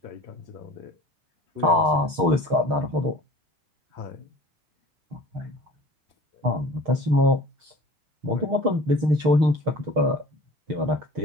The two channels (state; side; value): late; left; 6.5 ms